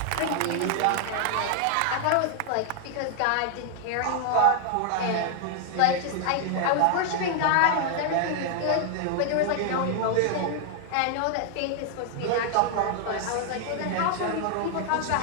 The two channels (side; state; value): both; different; correlation 0.00